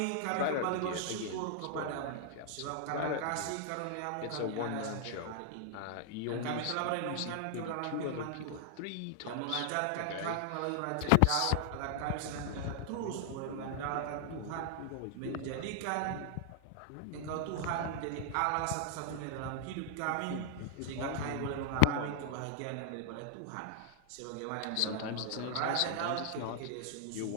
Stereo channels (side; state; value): both; different; correlation 0.00